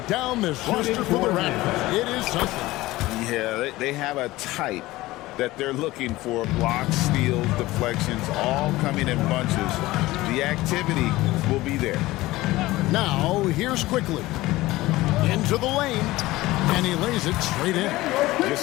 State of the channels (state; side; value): quieter; right; 18.4 dB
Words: down this roster for the Raptors. It is something. Yeah, they have a type that they're looking for. Blocks, steals, deflections, all coming in bunches. The activity will be there. Now, here's quickly. Into the lane, and he lays it straight in.